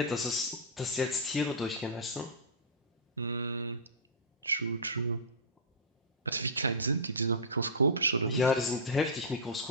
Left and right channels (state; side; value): normal; both; correlation -0.14